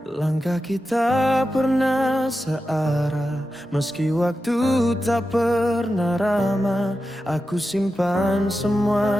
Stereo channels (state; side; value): normal; both; correlation 0.91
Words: Langkah kita pernah searah, meski waktu tak pernah ramah. Aku simpan